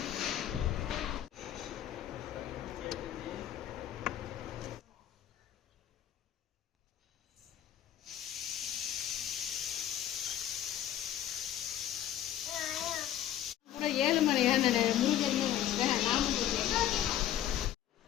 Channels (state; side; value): quieter; right; 11.4 dB